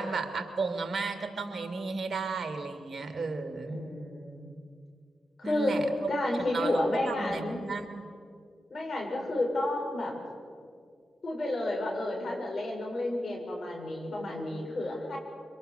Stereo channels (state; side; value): normal; both; correlation 0.88